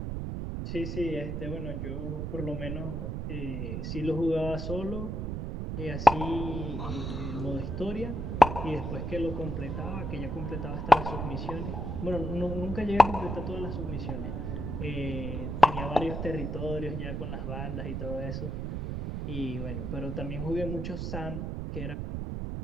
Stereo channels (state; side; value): noise; right; rumble, 3 dB below the sound